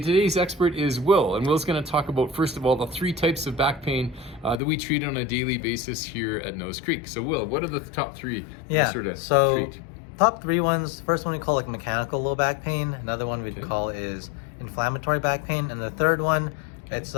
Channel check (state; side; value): drops out; right; at 4.6 s